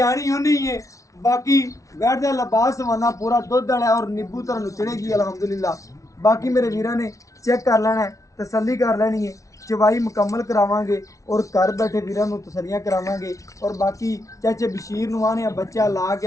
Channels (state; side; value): late; right; 0.16 ms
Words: होनी है। बाकी वैड़ दा लिबास हवाना पूरा दुध वाला और नींबू तरह नुचड़ेगी अल्हम्दुलिल्लाह। बाकी मेरे वीरां ने चेक कर लेना है, तसल्ली कर लेनी है, चवाई मुकम्मल करावांगे और घर बैठे वीरां नूं तसलियां करावांगे। और बाकी चाचे बशीर नूं आने बच्चा ला के